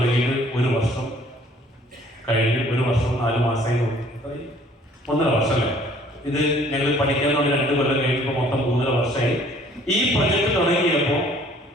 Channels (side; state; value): both; normal; correlation 0.57